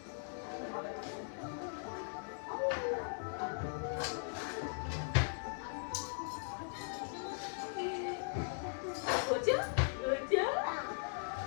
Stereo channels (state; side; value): silent; right; 52 dB below the other